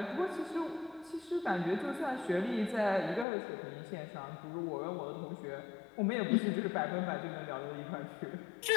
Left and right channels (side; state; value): right; drops out; at 3.2 s